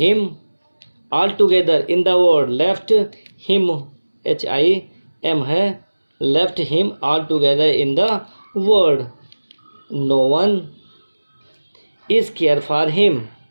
all together in the world, left him HIM है, left him all together in the world. No one is care for him,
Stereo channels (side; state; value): both; inverted; correlation -1.00